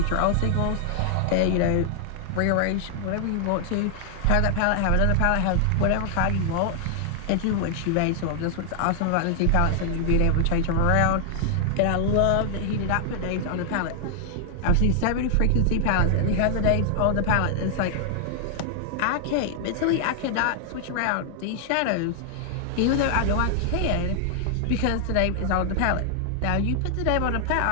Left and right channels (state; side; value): different; both; correlation 0.00